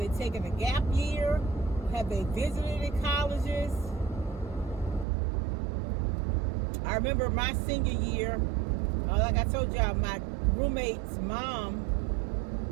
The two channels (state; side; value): drops out; left; at 5.1 s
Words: taking a gap year? Have they visited in colleges? I remember my senior year, like I told y'all, my roommate's mom